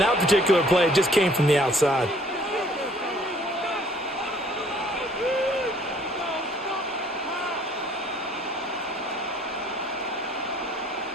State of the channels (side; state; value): both; normal; correlation 0.58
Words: particular play, it just came from the outside.